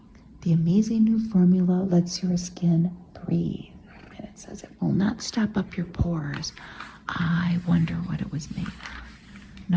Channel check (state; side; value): identical; both; correlation 1.00